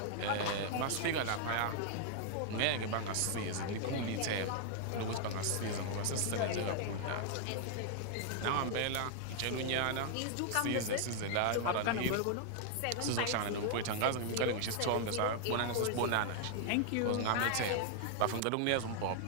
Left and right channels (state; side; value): different; both; correlation 0.00